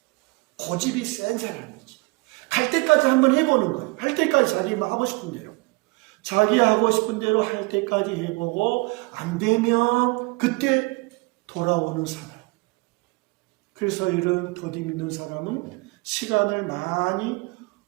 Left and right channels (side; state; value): left; quieter; 26.8 dB